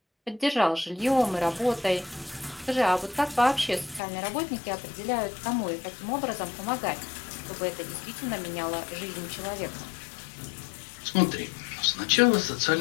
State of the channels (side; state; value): right; drops out; at 4.0 s